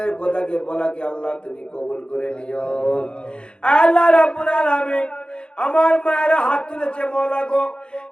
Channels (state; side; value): late; right; 0.053 ms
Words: কথাকে বলাকে আল্লাহ তুমি কবুল করে নিও। আল্লাহ রাব্বুল আলামিন আমার মায়েরা হাত তুলেছে মওলা গো,